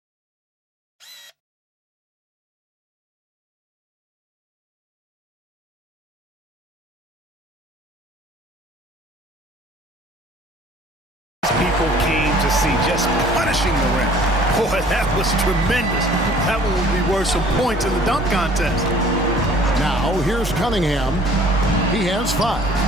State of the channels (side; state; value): both; normal; correlation 0.53